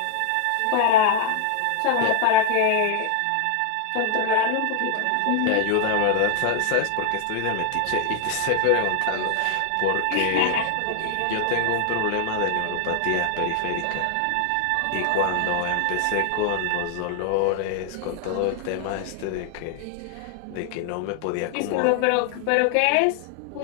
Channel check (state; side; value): different; both; correlation 0.00